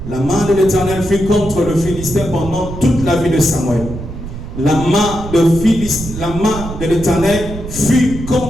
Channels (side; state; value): right; noise; rumble, 9 dB below the sound